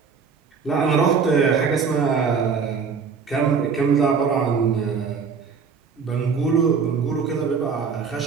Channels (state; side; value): quieter; left; 5.7 dB